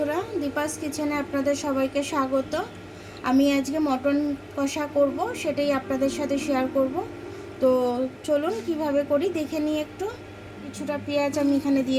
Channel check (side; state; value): both; identical; correlation 1.00